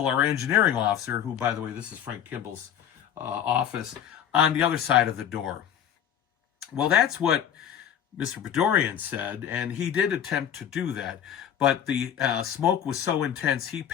our engineering officer, who, by the way, this is Frank Kimball's office, on the other side of the door. Well, that's what Mr. Podorian said, and he did attempt to do that. But the smoke was so intense, he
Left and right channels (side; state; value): right; quieter; 9.5 dB